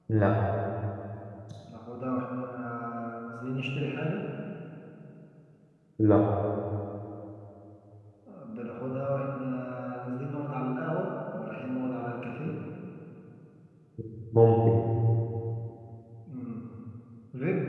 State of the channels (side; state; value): both; identical; correlation 1.00